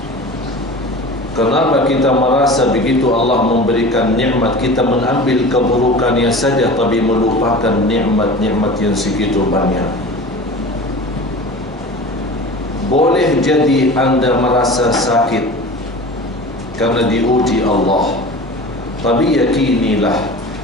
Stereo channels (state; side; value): normal; both; correlation 0.36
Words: Kenapa kita merasa begitu Allah memberikan nikmat, kita mengambil keburukannya saja tapi melupakan nikmat-nikmat yang segitu banyak? Boleh jadi anda merasa sakit karena diuji Allah, tapi yakinilah